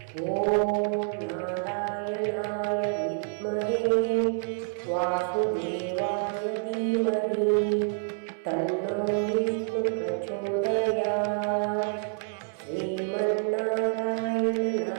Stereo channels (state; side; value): silent; left; 59 dB below the other